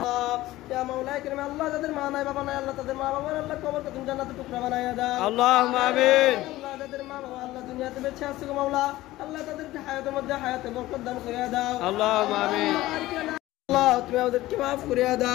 দাও ইয়া মাওলা কারীম আল্লাহ যাদের মা নাই বাবা নাই আল্লাহ তাদের মা বাবার আল্লাহ কবরকে তুমি জান্নাতের টুকরা বানাইয়া দাও اللهم آمين আল্লাহ যাদের মা বাবা আল্লাহ দুনিয়াতে বেঁচে আছে গো মাওলা আল্লাহ তাদেরকে হায়াতের মধ্যে হায়াতে বরকত দান করিয়া দাও اللهم آمين আল্লাহ তুমি আমাদেরকে maaf করিয়া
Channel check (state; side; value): quieter; right; 16.8 dB